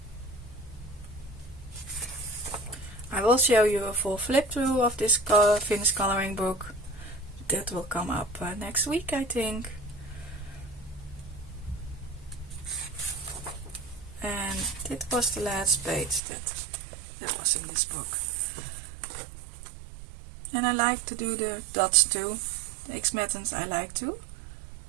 I will show you a full flip through of this finished coloring book. That will come up next week, I think. And this was the last page that was in this book. And I like to do the dots too. The X methods I like to.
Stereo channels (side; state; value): left; drops out; at 16.2 s